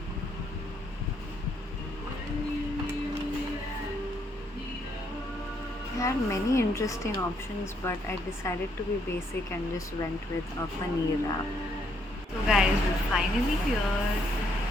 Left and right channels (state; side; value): normal; both; correlation 0.72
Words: I had many interesting options, but I decided to be basic and just went with a paneer wrap. So guys, we're finally here.